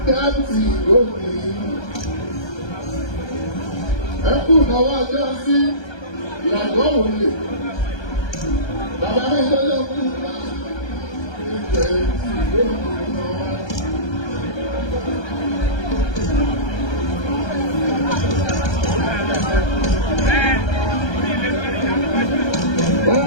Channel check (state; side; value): late; right; 1.3 ms